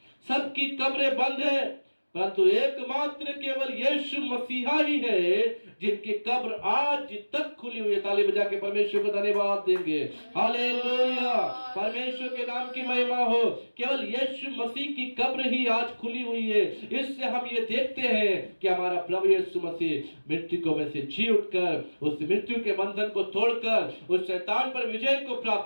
सबकी कब्रें बंद है, परंतु एकमात्र केवल यीशु मसीहा ही है जिनकी कब्र आज तक खुली हुई है। ताली बजा के परमेश्वर को धन्यवाद देंगे। हालेलुया। परमेश्वर के नाम की महिमा हो। केवल यीशु मसीह की कब्र ही आज खुली हुई है। इससे हम ये देखते हैं कि हमारा प्रभु यीशु मसीह मृतकों में से जी उठकर उस मृत्यु के बंधन को तोड़कर उस शैतान पर विजय को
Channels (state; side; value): inverted; both; correlation -1.00